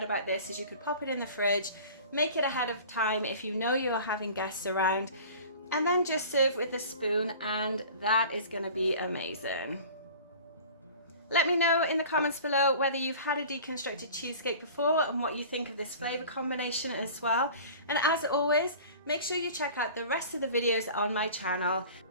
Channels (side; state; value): both; inverted; correlation -0.41